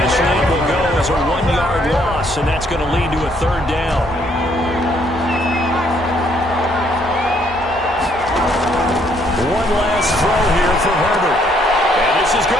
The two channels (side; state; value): both; normal; correlation 0.68